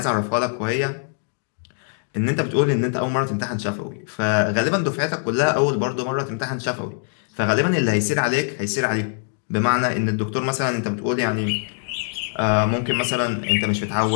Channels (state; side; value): silent; right; digital silence